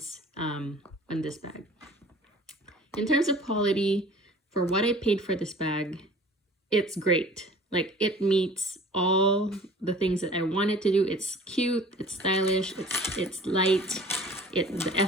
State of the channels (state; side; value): normal; both; correlation 0.47